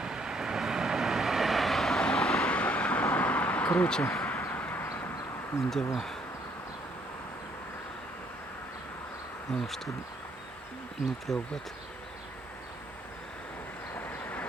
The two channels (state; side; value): normal; both; correlation 0.67